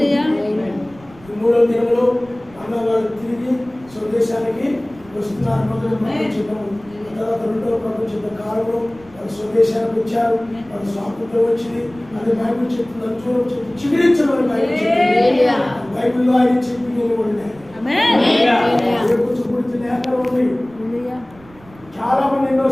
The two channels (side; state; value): right; noise; rumble, 24 dB below the sound